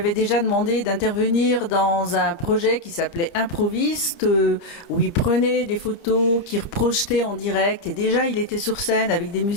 déjà demandé d'intervenir dans un projet qui s'appelait Improviste, où il prenait des photos qu'il reprojetait en direct. Et déjà, il était sur scène avec des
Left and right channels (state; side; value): late; right; 30 ms